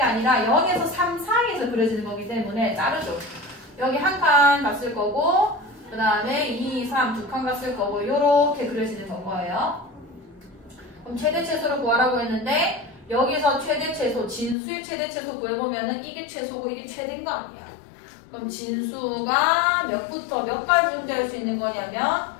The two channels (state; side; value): drops out; right; at 14.6 s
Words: 아니라 0에서 3 사이에서 그려지는 거기 때문에 자르죠. 여기 한 칸 갔을 거고 그 다음에 2, 3 두 칸 갔을 거고 이렇게 그려지는 거예요. 그럼 최대 최소를 구하라고 했는데 여기서 최대 최소, 진수의 최대 최소 구해보면은 이게 최소고 이게 최대인 거 아니야. 그럼 진수가 몇부터 몇까지 존재할 수 있는 거냐면